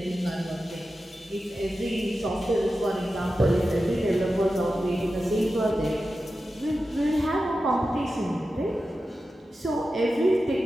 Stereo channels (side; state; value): both; normal; correlation 0.92